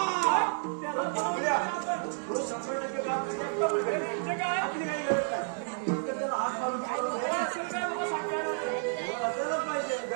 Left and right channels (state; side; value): silent; left; digital silence